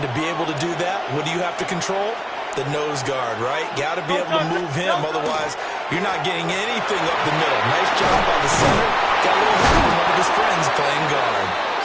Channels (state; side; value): identical; both; correlation 1.00